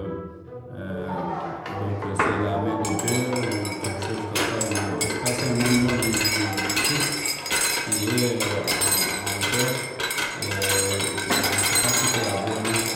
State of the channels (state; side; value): identical; both; correlation 1.00